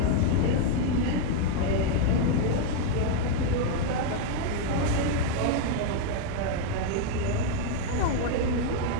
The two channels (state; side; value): different; both; correlation 0.00